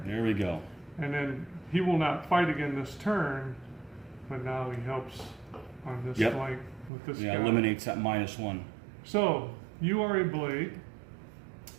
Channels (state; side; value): drops out; left; at 6.9 s